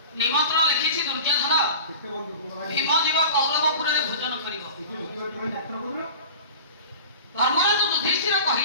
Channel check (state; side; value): inverted; both; correlation -0.37